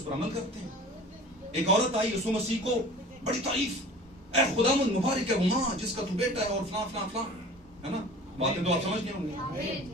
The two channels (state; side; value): normal; both; correlation 0.42